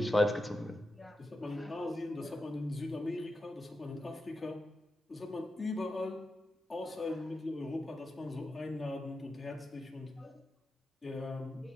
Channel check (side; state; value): both; normal; correlation 0.89